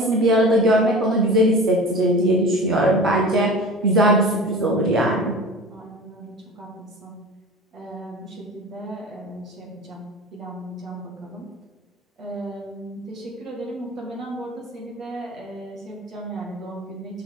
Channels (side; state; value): both; normal; correlation 0.37